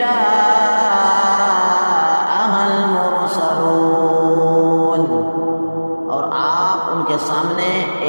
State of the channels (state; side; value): inverted; both; correlation -1.00